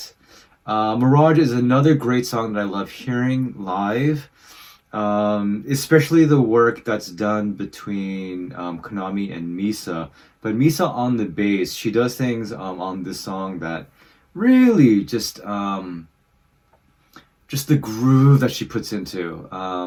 Mirage is another great song that I love hearing live, especially the work that's done between Konami and Misa. But Misa on the bass, she does things on this song that really just the groove that she puts into.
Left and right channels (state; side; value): identical; both; correlation 1.00